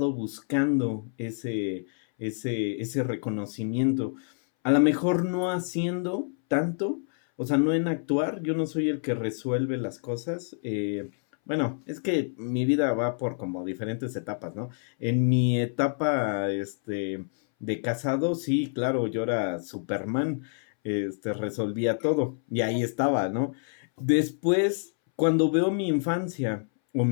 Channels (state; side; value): silent; right; 60 dB below the other